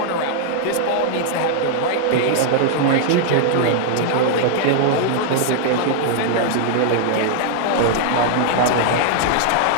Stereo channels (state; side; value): different; both; correlation 0.00